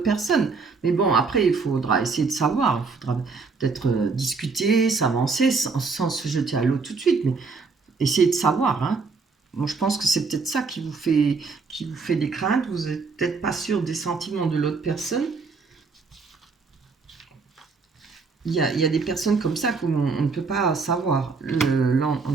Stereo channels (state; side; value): quieter; left; 4.6 dB